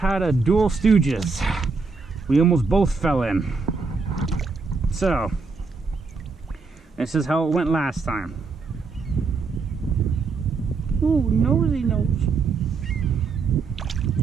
a dual stooges. We almost both fell in. So, this is how it went last time. Ooh, nosy nose.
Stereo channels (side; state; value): left; quieter; 4.5 dB